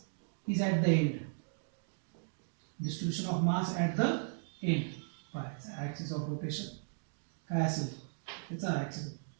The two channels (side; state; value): left; silent; digital silence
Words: is at the end. Distribution of mass at the end. पहा ॲक्सिस ऑफ रोटेशन काय असेल त्याचा ॲक्सिस.